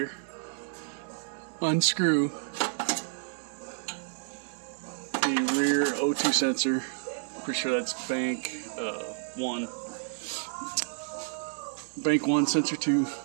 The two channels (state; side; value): silent; left; digital silence